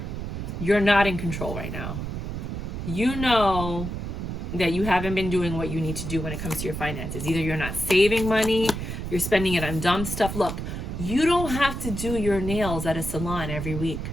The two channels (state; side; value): noise; right; rumble, 5 dB below the sound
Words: You're not in control right now. You know that you haven't been doing what you need to do when it comes to your finances. Either you're not saving money, you're spending it on dumb stuff. Look, you don't have to do your nails at a salon every week.